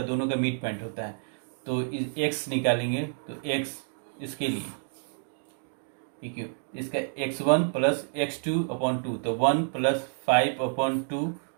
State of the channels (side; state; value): left; silent; 59 dB below the other